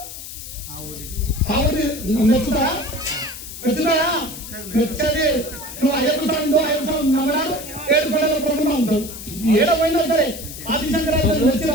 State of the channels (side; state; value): left; noise; hiss, 11 dB below the sound